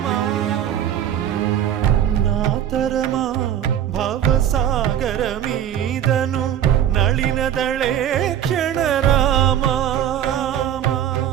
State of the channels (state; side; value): quieter; left; 10.3 dB